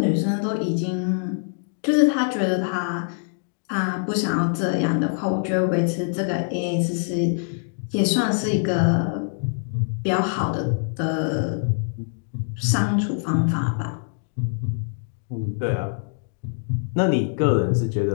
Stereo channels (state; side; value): silent; right; digital silence